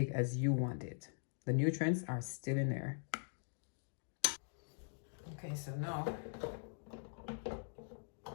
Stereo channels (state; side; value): silent; right; digital silence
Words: as you want it. The nutrients are still in there. Okay, so now